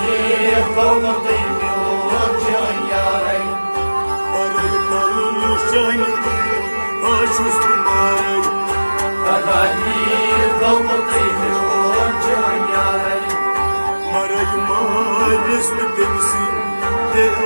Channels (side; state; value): both; inverted; correlation -1.00